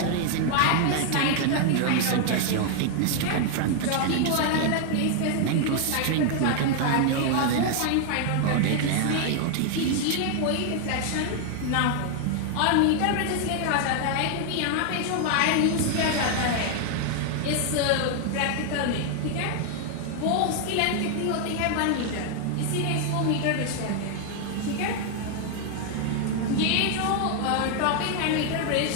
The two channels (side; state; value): both; different; correlation 0.00